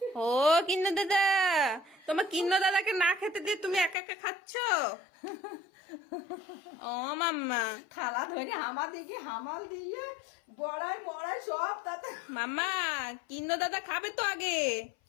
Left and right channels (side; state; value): right; drops out; at 4.0 s